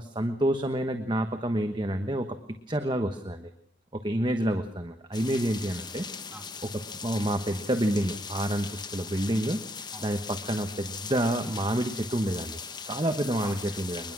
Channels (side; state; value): both; normal; correlation 0.74